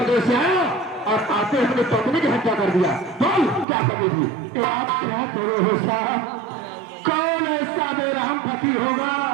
से आया और आते अपनी पत्नी की हत्या कर दिया? बोल, क्या कमी थी? आप क्या करो साहब, कौन ऐसा बेरहम पति होगा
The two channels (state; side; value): drops out; left; at 3.7 s